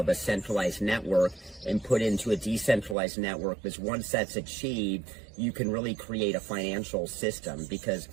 a centralized network and put into a decentralized network, because once that's achieved, you can really create a financial system, because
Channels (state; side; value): drops out; left; at 3.0 s